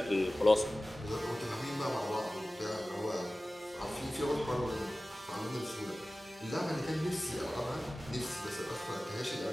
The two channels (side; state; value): both; normal; correlation 0.97